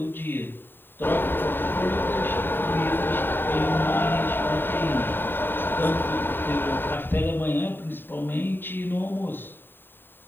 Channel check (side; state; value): right; late; 0.096 ms